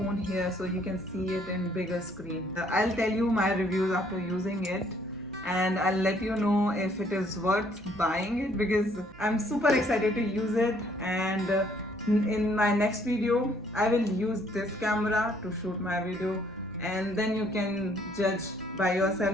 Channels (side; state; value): right; noise; hum, 22 dB below the sound